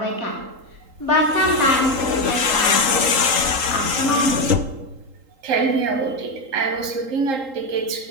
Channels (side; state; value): left; late; 3.8 ms